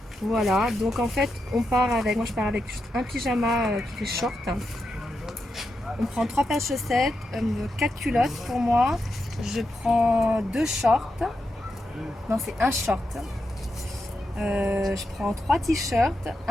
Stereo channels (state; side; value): normal; both; correlation 0.86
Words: Voilà, donc en fait, moi je pars avec juste un pyjama qui fait short. On prend 3 paires de chaussettes, 4 culottes pour moi. Je prends 2 shorts. Non, c'est un short. Je prends 3 t-shirts,